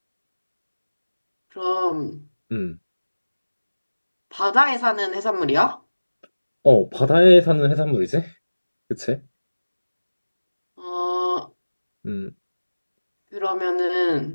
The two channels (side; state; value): both; inverted; correlation -1.00